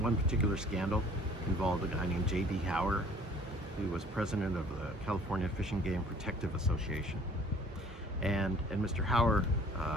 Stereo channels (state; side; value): normal; both; correlation 0.53